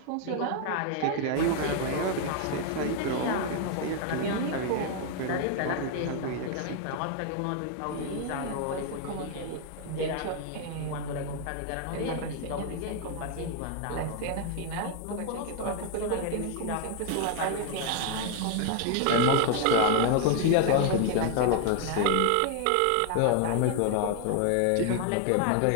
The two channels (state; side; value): different; both; correlation 0.00